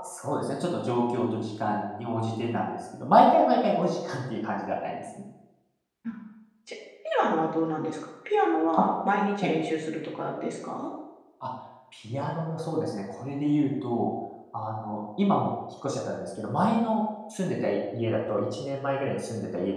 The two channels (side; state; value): both; identical; correlation 1.00